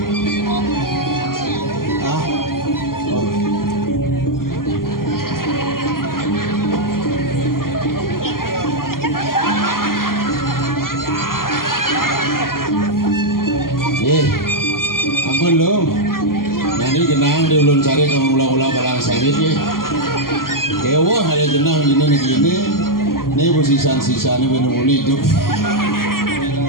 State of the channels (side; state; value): right; late; 0.92 ms